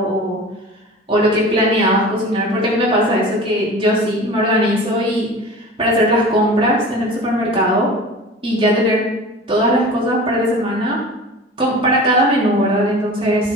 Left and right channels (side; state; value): both; normal; correlation 0.38